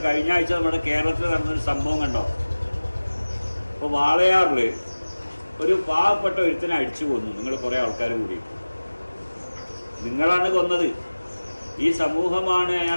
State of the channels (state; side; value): inverted; both; correlation -1.00